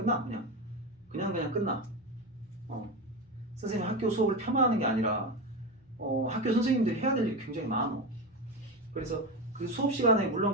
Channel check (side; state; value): both; normal; correlation 0.18